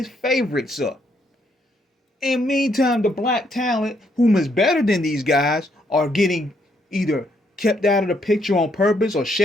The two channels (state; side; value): normal; both; correlation 0.73